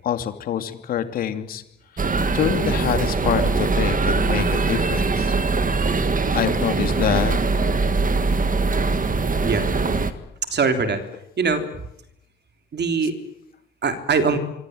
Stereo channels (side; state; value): both; normal; correlation 0.46